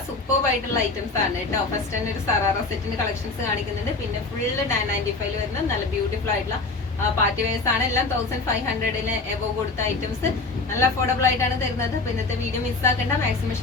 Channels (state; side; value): quieter; right; 3.6 dB